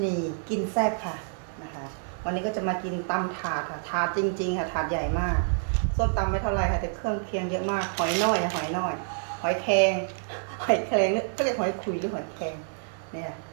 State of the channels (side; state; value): left; silent; 59 dB below the other